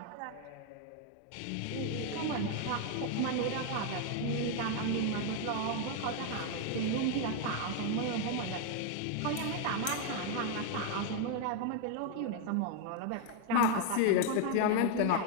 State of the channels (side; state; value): both; different; correlation 0.01